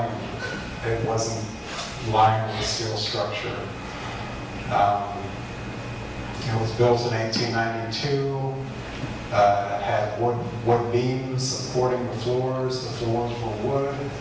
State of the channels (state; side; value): identical; both; correlation 1.00